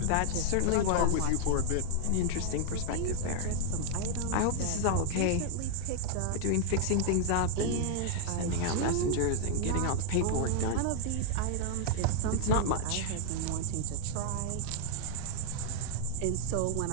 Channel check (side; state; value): both; different; correlation 0.00